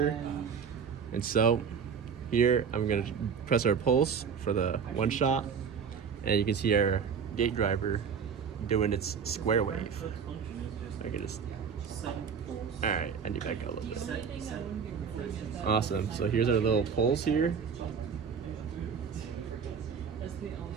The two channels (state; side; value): quieter; left; 6.6 dB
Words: And so here I'm gonna press our pulse for the one shot, and you can see our gate driver doing its square wave. I can just, all right, I need to back up a little bit. Awesome, so here's our little pulse here.